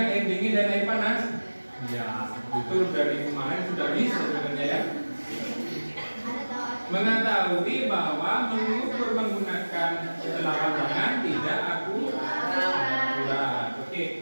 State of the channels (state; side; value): inverted; both; correlation -1.00